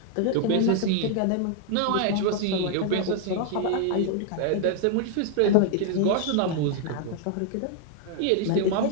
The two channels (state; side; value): different; both; correlation 0.00